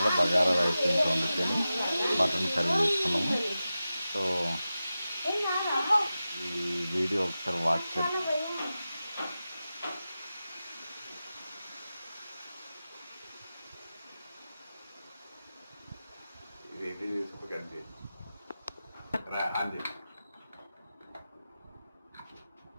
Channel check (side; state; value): both; inverted; correlation -0.94